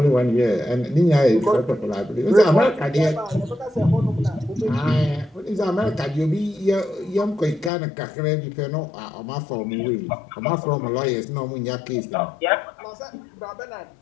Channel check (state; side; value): drops out; right; at 7.7 s